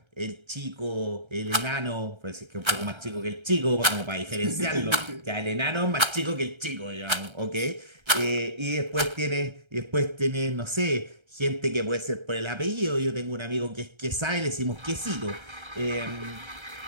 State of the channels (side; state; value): left; late; 1.3 ms